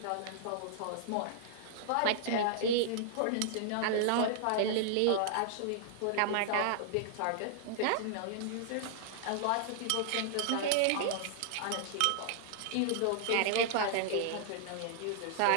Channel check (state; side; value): different; both; correlation -0.01